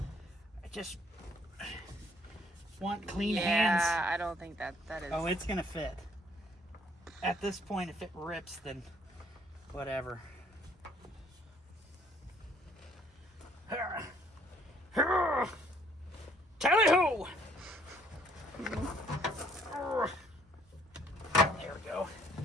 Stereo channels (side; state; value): both; normal; correlation 0.63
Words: just want clean hands. Yeah, I don't think that is. Oh, it's gonna fit. At this point, if it rips, then whatever. Tally-ho! There we go.